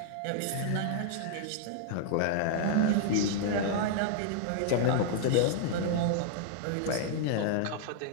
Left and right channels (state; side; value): different; both; correlation -0.01